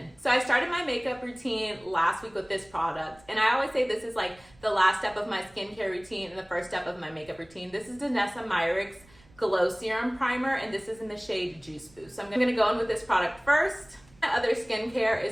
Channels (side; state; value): right; noise; rumble, 28 dB below the sound